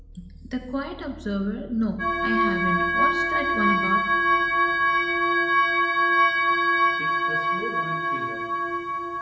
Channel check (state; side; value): identical; both; correlation 1.00